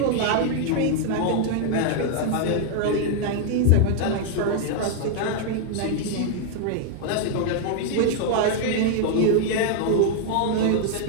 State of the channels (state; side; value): different; both; correlation -0.01